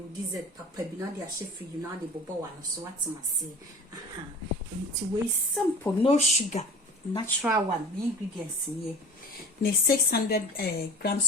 dessert papa be not their chef, you know the bobo one, so what must say. It's way simple, no sugar, natural one, the ingredients here. 600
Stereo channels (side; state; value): both; normal; correlation 0.39